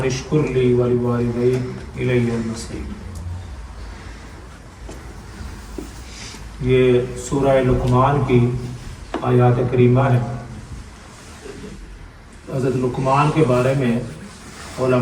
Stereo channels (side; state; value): both; identical; correlation 1.00